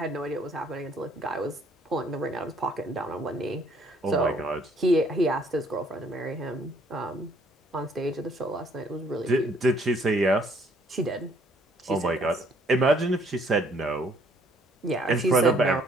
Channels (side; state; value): both; normal; correlation 0.64